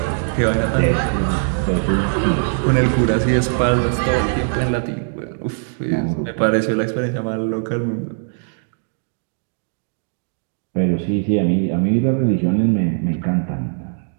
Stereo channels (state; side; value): silent; left; 66 dB below the other